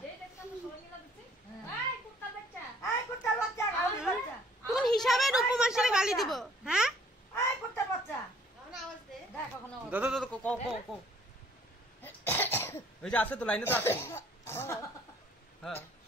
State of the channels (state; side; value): normal; both; correlation 0.59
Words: এই দেখছ না সবাই মিলা দিচ্ছে এই কুত্তার বাচ্চা এই কুত্তার বাচ্চা গালি বাচ্চা কোন হিসাবে রূপমাসিরে গালি দিব হ্যাঁ এই কুত্তার বাচ্চা কোন আওয়াজ দে দেখ ওখানে আওয়াজ দাদা দাদা কো কো কো এই যে আছে তো লাইনে তো আছে হ্যাঁ